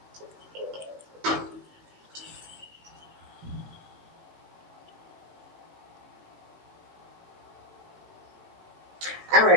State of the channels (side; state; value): left; late; 18 ms